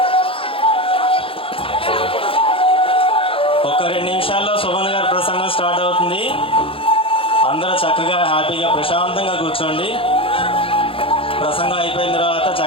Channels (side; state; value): right; late; 0.26 ms